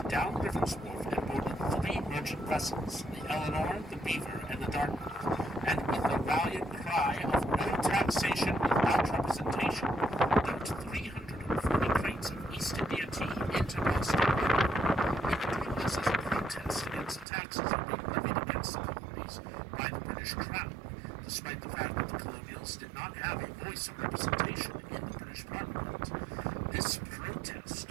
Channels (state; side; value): drops out; left; at 17.2 s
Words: down Griffin's Wharf and boarded three merchant vessels, the Eleanor, the Beaver, and the Dartmouth, and with the valiant cry of "No taxation without representation," dumped 340 crates of East India tea into Boston. They were doing this as a protest against the taxes that were being levied against the colonies by the British Crown, despite the fact that the colonials did not have a voice of representation in the British Parliament. This